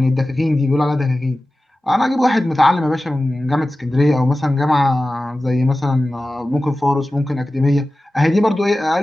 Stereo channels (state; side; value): normal; both; correlation 0.95